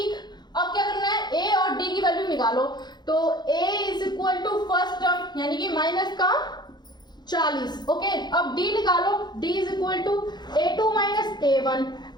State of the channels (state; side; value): late; right; 0.21 ms